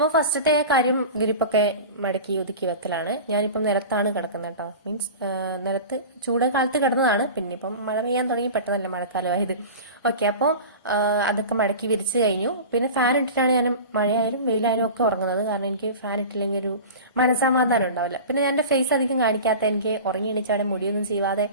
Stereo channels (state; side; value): inverted; both; correlation -0.33